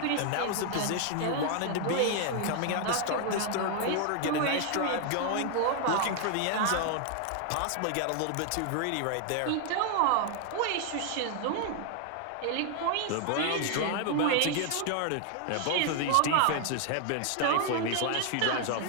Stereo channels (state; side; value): different; both; correlation 0.00